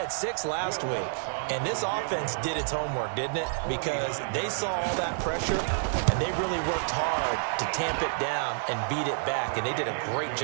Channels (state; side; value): silent; left; digital silence